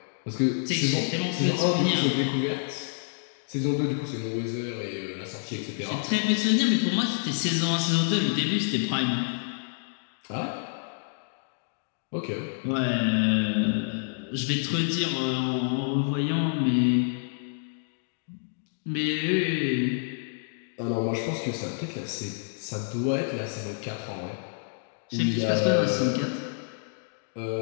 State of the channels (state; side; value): silent; right; digital silence